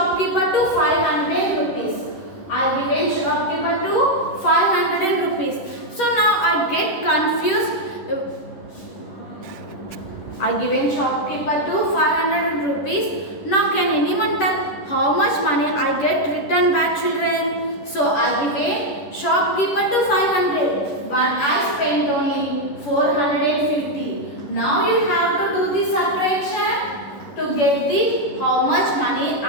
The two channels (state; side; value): late; right; 10 ms